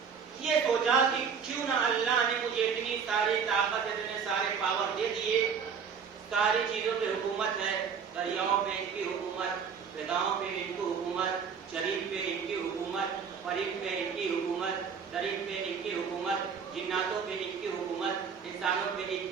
یہ سوچا کہ کیوں نہ اللہ نے مجھے اتنی ساری طاقت، اتنے سارے پاور دے دیے، ساری چیزوں پہ حکومت ہے، دریاؤں پہ ان کی حکومت، فضاؤں پہ ان کی حکومت، شریر پہ ان کی حکومت، فرشتوں پہ ان کی حکومت، درخت پہ ان کی حکومت، جناتوں پہ ان کی حکومت، انسانوں پہ ان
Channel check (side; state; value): left; quieter; 6.5 dB